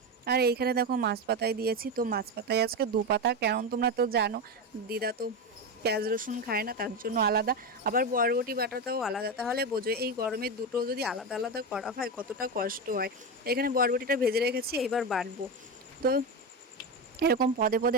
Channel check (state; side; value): normal; both; correlation 0.16